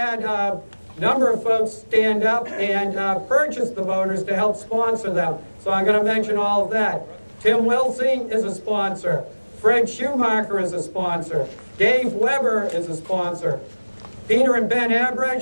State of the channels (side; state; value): both; inverted; correlation -1.00